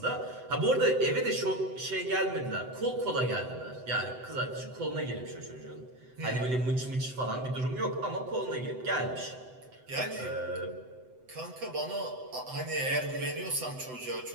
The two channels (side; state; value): left; late; 7.9 ms